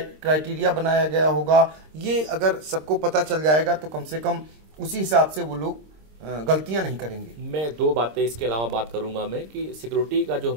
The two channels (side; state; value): left; late; 26 ms